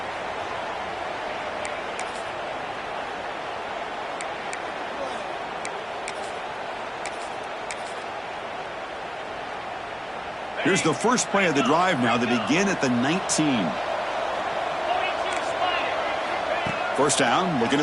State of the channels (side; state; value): both; identical; correlation 1.00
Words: Here's the first play of the drive now. They begin at the 19. First down, looking